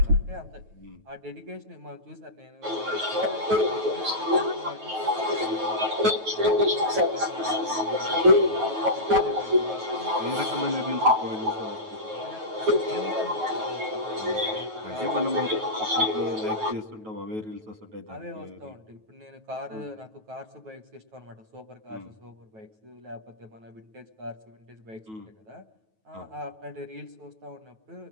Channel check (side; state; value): left; late; 9.2 ms